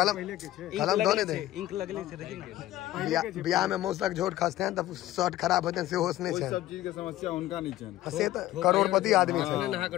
कलम दो ने दे इंक लगले छै देखिन बियाह में मौसक झोट खसते हैं तब शर्ट खराब होते हैं से होश नहीं छै सब चीज के समस्या उनका नहीं छै से तो करोड़पति आदमी छै नहा के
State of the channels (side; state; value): right; quieter; 15.0 dB